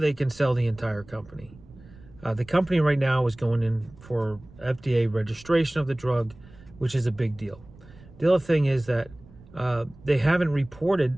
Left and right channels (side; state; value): right; noise; rumble, 22 dB below the sound